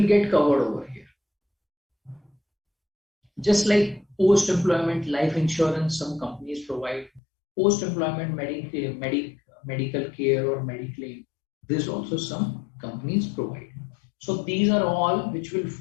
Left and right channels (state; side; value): drops out; right; at 7.2 s